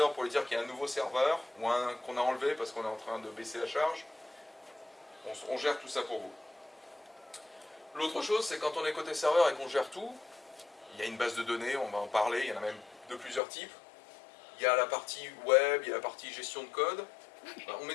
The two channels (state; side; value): drops out; right; at 13.4 s